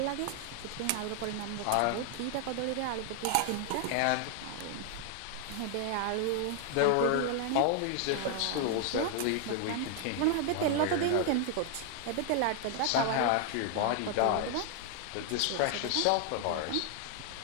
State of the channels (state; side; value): different; both; correlation 0.00